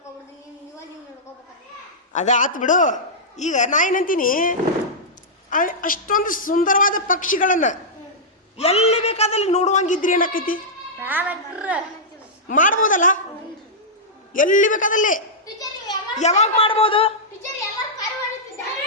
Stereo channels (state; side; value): normal; both; correlation -0.11